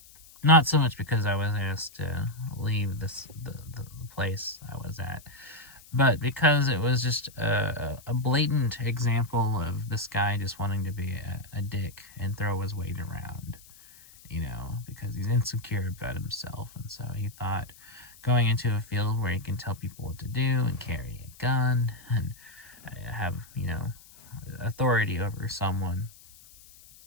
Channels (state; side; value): noise; left; hiss, 22 dB below the sound